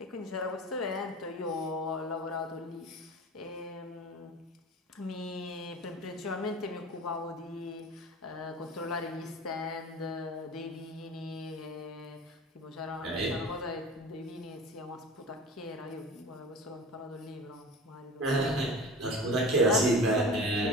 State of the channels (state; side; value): normal; both; correlation 0.37